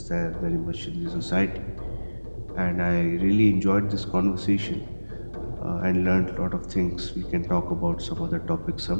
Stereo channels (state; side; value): inverted; both; correlation -1.00